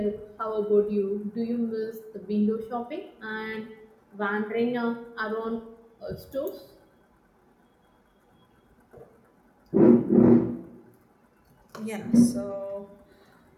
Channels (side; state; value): both; identical; correlation 1.00